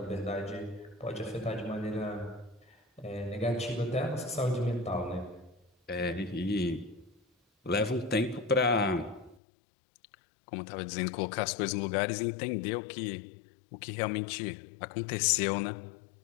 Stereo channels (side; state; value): right; drops out; at 9.3 s